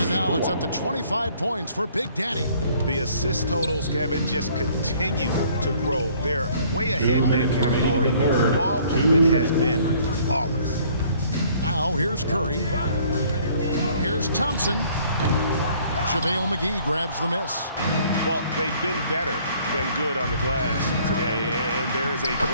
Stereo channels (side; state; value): both; inverted; correlation -0.59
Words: now it's up to 25 points for Big Daddy. The assist totals, Kevin, just continue to grow. They're way ahead in that category. Ball movement has been flawless. Now here's Curry. Here's Thompson. JaVale McGee grabs the miss. Well, they've been better than good on the glass today, and there is a